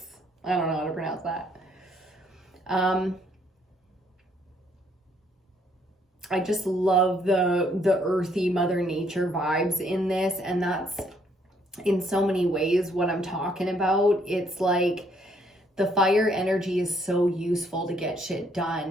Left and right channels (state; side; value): normal; both; correlation 0.68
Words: I don't know how to pronounce that. I just love the earthy Mother Nature vibes in this, and that's in so many ways what I'm talking about. It's like the fire energy is so useful to get shit